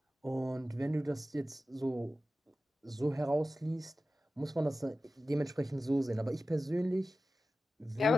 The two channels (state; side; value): normal; both; correlation 0.94